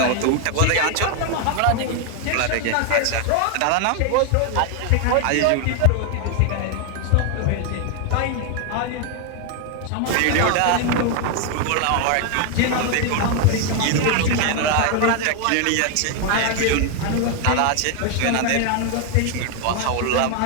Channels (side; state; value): both; different; correlation 0.00